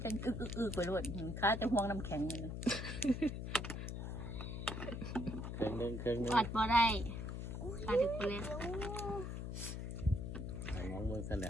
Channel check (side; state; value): left; noise; hum, 5 dB below the sound